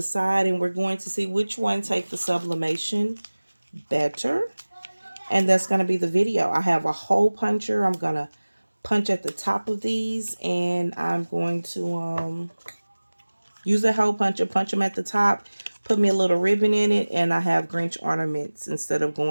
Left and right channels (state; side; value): inverted; both; correlation -1.00